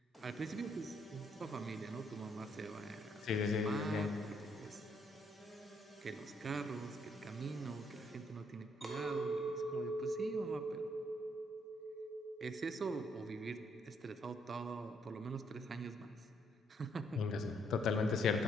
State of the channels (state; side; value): normal; both; correlation 0.71